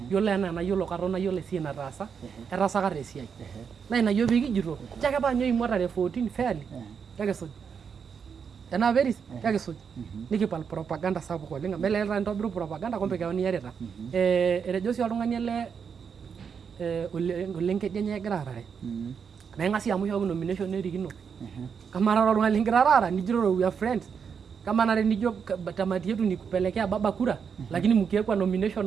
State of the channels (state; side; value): quieter; left; 6.6 dB